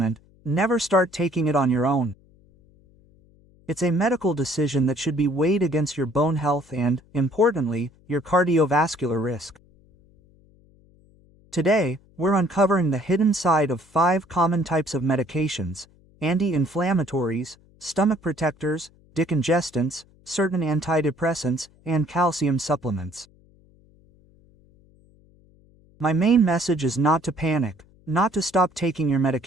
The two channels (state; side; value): noise; left; hum, 29 dB below the sound